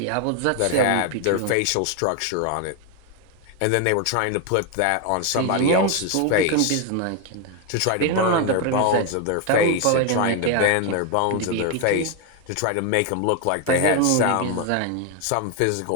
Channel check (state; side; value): different; both; correlation 0.01